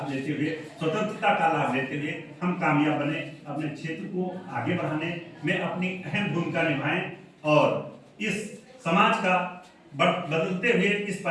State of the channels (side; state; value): both; identical; correlation 1.00